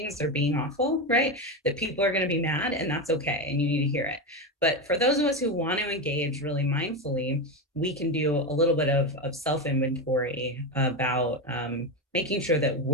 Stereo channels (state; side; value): normal; both; correlation 0.15